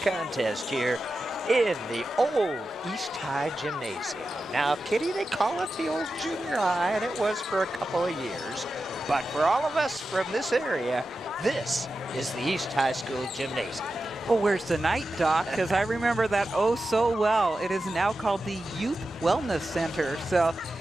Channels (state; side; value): normal; both; correlation 0.92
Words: contest here in the old East High Gymnasium. Now, Kitty, they call it the old junior high, and it was for a couple of years. But for all of us from this area, this is the East High School Gymnasium. Well, where's the night, Doc? Because I remember that oh so well. It is now called the Youth Wellness Center. So